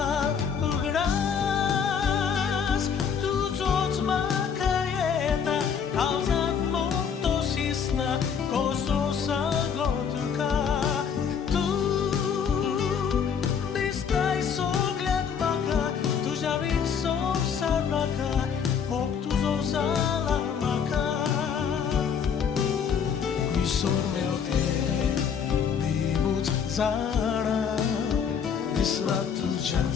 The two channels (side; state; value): right; quieter; 7.1 dB